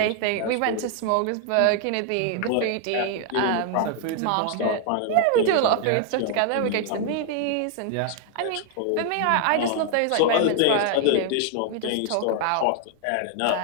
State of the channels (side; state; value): both; different; correlation 0.00